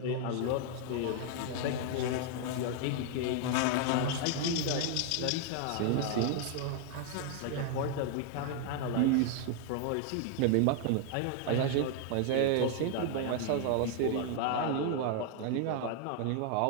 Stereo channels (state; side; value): different; both; correlation 0.00